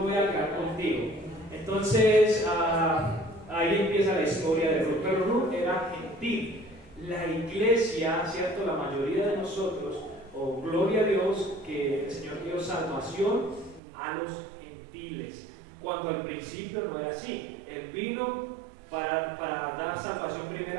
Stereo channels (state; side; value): drops out; left; at 13.8 s